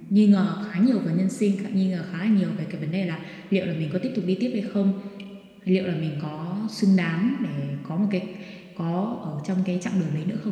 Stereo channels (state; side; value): identical; both; correlation 1.00